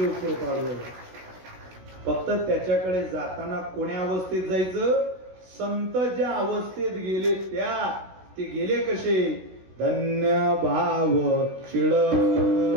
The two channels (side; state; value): left; late; 16 ms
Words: कृपाळू आहे. फक्त त्याच्याकडे जाताना कोण्या अवस्थेत जायचं? संत ज्या अवस्थेत गेले त्या. ते गेले कसे? धन्य भाव शिळ